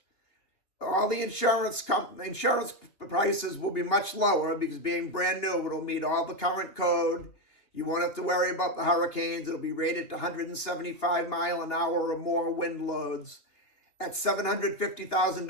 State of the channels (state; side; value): late; right; 2.8 ms